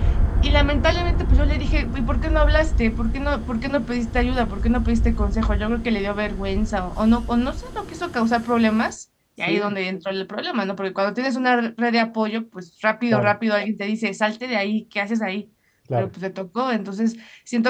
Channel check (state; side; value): identical; both; correlation 1.00